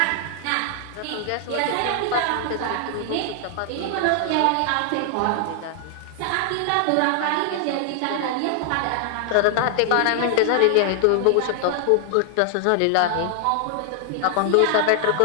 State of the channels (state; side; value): different; both; correlation 0.00